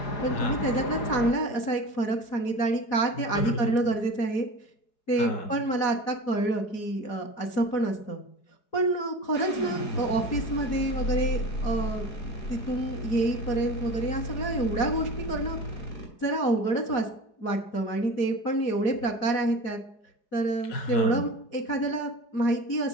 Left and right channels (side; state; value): right; late; 4.7 ms